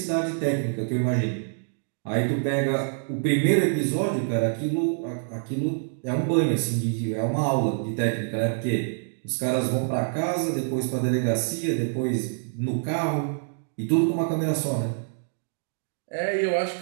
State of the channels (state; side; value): silent; left; digital silence